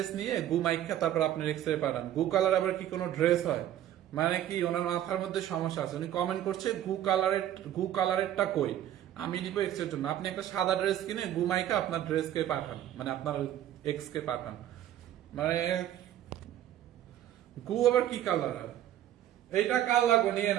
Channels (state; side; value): quieter; left; 11.9 dB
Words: নিয়ে গু মাইখা তারপর আপনার এক্স এ পাঠান। গু কালার আবার কি কোনো ড্রেস হয়? মানে কি ওনার মাথার মধ্যে সমস্যা আছে, উনি কমেন্ট করছে গু কালারেরটা কই, আমি দিব এক্স এর জন্য। আপনি একটা সাদা ড্রেস কিনে গুমাইকা আপনার ড্রেসকে পাঠান, মানে আপনার এক্স কে পাঠান, মানে গু আবার কি কালার? এইটা কাল লাগবে, নিয়ে